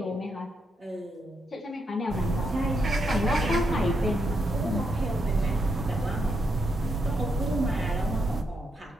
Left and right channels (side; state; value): both; normal; correlation 0.80